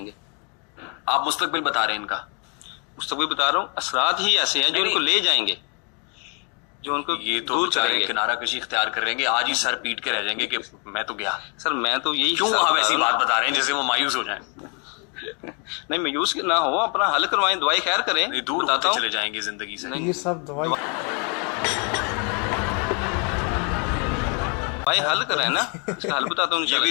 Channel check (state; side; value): quieter; right; 36.0 dB